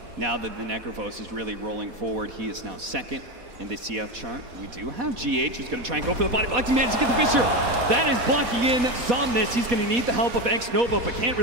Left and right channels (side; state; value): left; late; 4.5 ms